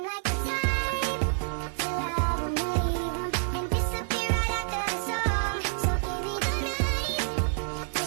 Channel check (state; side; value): silent; left; digital silence